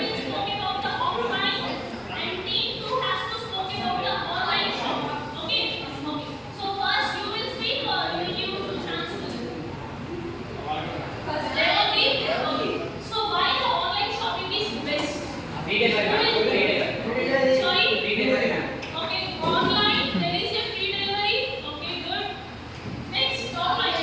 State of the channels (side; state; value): both; identical; correlation 1.00